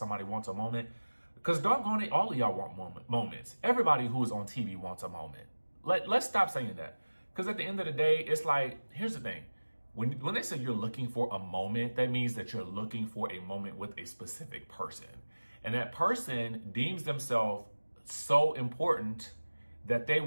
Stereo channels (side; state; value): both; inverted; correlation -1.00